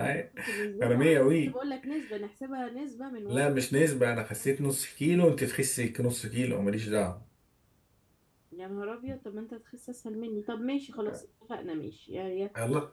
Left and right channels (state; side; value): identical; both; correlation 1.00